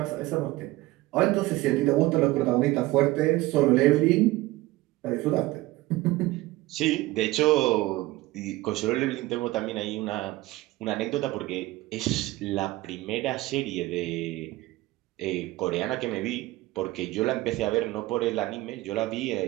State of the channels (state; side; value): quieter; left; 18.7 dB